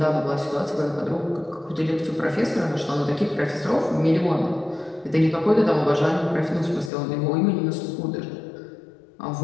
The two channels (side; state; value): right; drops out; at 6.9 s